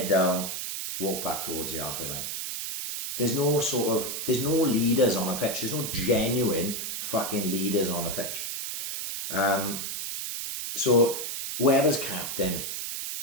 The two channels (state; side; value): noise; right; hiss, 4 dB below the sound